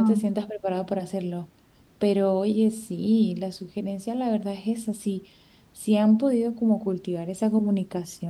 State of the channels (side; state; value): both; identical; correlation 1.00